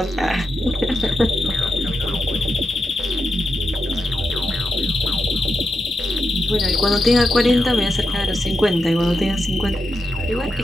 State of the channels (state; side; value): normal; both; correlation 0.86